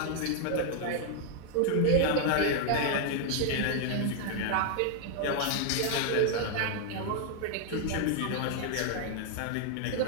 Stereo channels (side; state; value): both; different; correlation 0.00